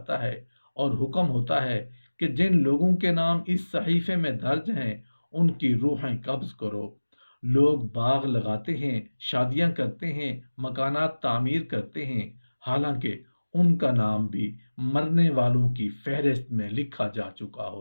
ہے اور حکم ہوتا ہے کہ جن لوگوں کے نام اس صحیفے میں درج ہیں ان کی روحیں قبض کرو۔ لوگ باغ لگاتے ہیں، شادیاں کرتے ہیں، مکانات تعمیر کرتے ہیں، حالانکہ ان کا نام بھی مرنے والوں کی فہرست میں لکھا جا چکا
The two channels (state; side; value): inverted; both; correlation -1.00